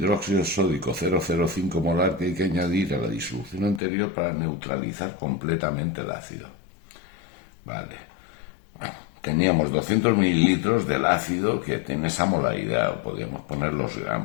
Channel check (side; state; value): right; drops out; at 3.8 s